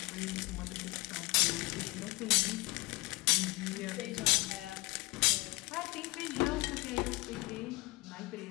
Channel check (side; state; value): right; quieter; 23.7 dB